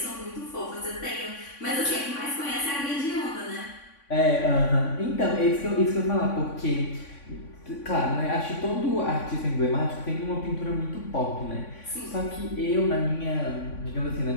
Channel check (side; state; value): right; late; 3.5 ms